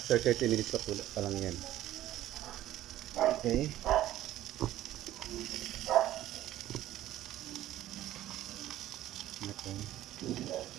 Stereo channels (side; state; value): left; quieter; 13.8 dB